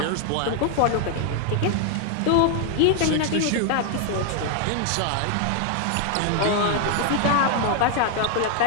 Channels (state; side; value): different; both; correlation 0.00